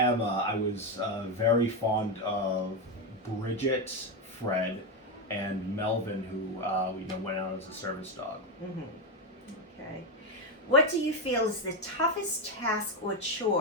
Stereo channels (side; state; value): both; normal; correlation 0.09